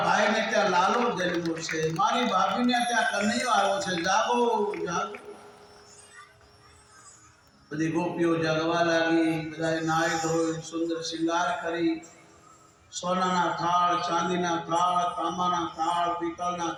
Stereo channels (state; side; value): identical; both; correlation 1.00